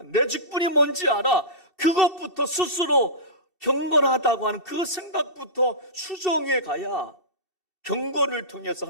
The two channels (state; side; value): late; left; 2.7 ms